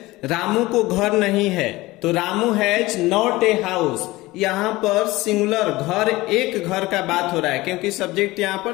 रामू को घर नहीं है, तो Ramu has not a house. यहां पर सिंगुलर घर, एक घर का बात हो रहा है क्योंकि सब्जेक्ट यहां पर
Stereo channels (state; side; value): quieter; right; 19.7 dB